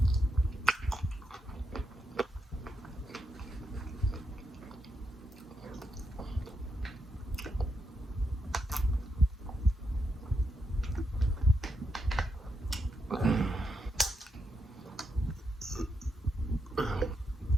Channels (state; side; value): normal; both; correlation 0.82